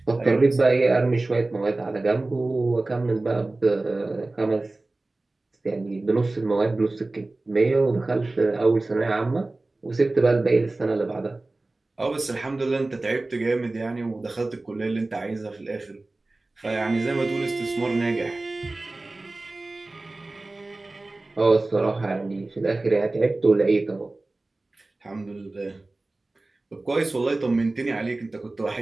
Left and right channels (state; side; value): quieter; left; 3.0 dB